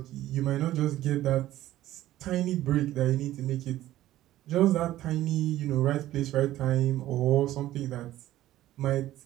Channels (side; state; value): left; quieter; 14.5 dB